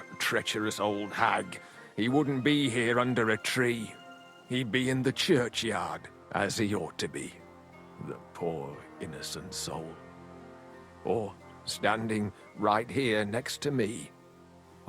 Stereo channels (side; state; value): both; identical; correlation 1.00